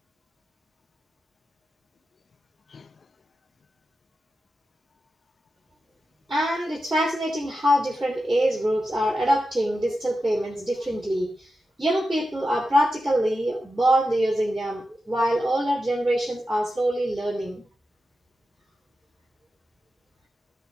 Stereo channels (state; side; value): normal; both; correlation 0.90